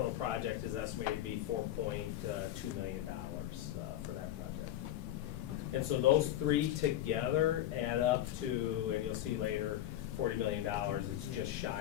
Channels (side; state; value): right; quieter; 12.7 dB